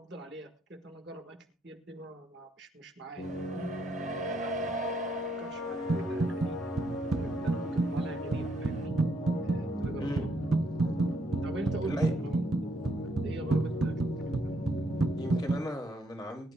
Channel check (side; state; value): both; normal; correlation 0.73